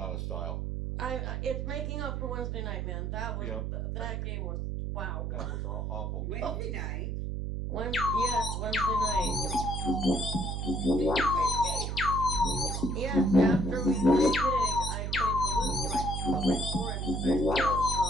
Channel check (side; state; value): right; noise; hum, 2 dB below the sound